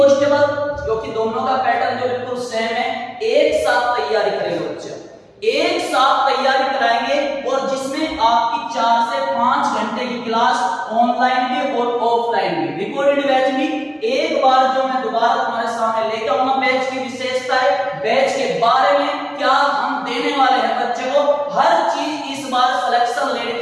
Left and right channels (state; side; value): identical; both; correlation 1.00